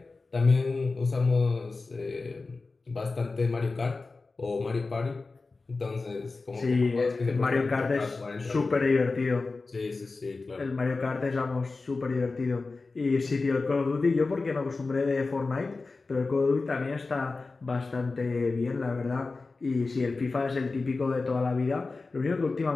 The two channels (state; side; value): quieter; right; 3.8 dB